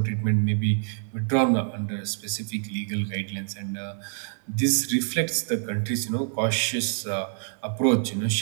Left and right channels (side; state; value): left; silent; digital silence